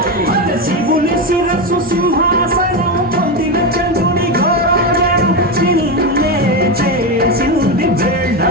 శివుని శిరసు సింహాసనం పొందిన చంద్రుని భోజనం చిన్నే చేసింది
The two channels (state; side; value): normal; both; correlation 0.13